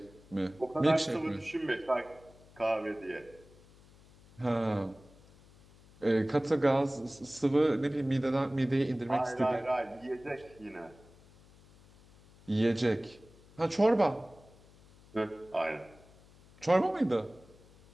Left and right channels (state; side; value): noise; left; hum, 25 dB below the sound